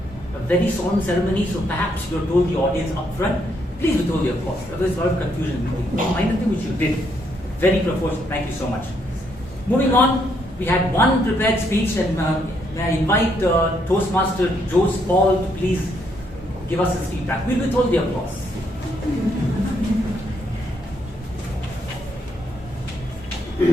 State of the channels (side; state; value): both; normal; correlation 0.74